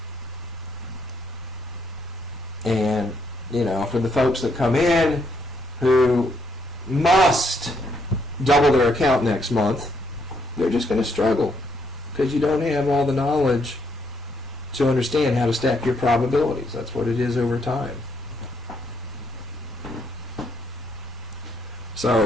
And, for the folks that come in who must double their account next month, they're just going to struggle because you don't have all the knowledge to understand how to stack your probabilities. That's what it is over time.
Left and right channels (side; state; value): both; normal; correlation 0.74